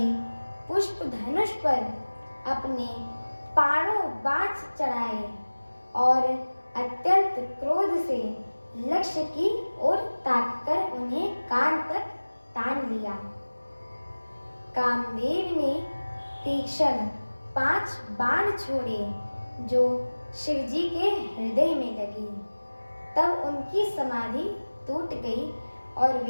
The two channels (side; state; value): both; inverted; correlation -1.00